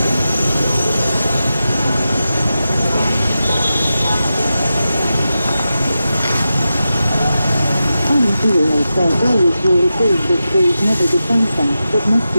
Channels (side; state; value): both; inverted; correlation -0.91